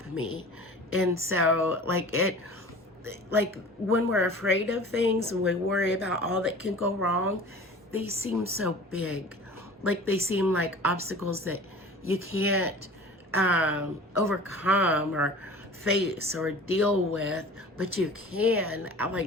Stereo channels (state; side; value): normal; both; correlation 0.41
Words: me. And so when we're afraid of things and we worry about all that can go wrong, they seem so big. They seem like obstacles that you can't overcome or face or deal with, but you can.